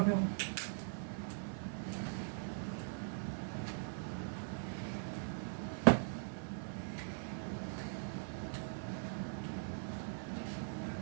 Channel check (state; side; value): silent; left; 50 dB below the other